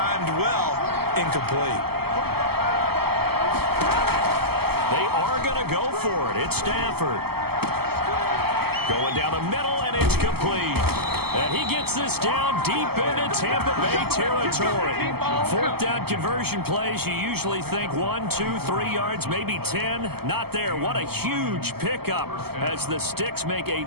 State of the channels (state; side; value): late; left; 0.96 ms